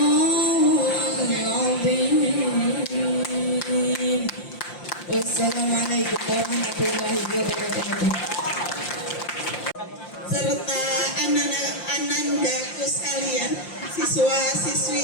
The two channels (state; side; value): late; right; 5.7 ms